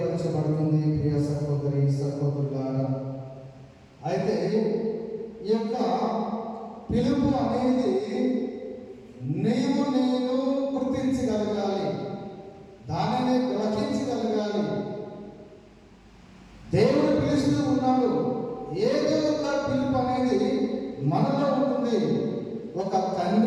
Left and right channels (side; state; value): both; identical; correlation 1.00